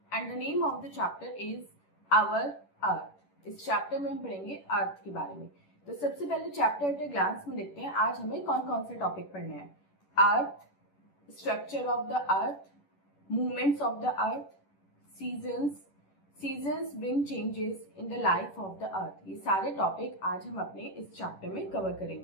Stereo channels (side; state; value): right; late; 11 ms